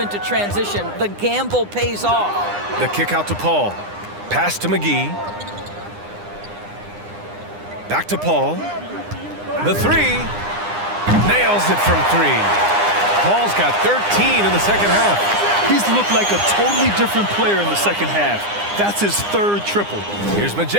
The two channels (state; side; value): late; left; 9.8 ms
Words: transition. The gamble pays off. The kick out to Paul. Pass to McGee. Back to Paul. The 3. Nails it from 3. Paul's got 13 in the second half. He's looked like a totally different player in the second half. That's his 3rd triple. Here's